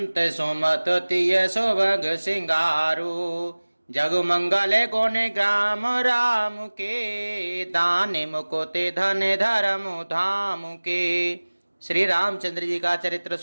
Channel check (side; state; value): both; inverted; correlation -1.00